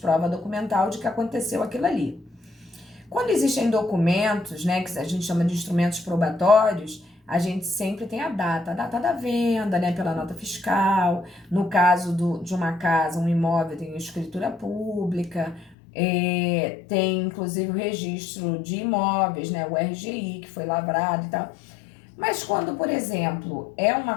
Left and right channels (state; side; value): drops out; right; at 15.8 s